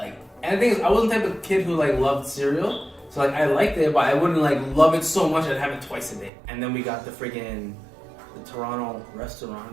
and the thing is, I wasn't the type of kid who like loved cereal. So like I liked it, but I wouldn't like love it so much I'd have it twice a day. And then we got the Toronto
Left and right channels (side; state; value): left; drops out; at 6.3 s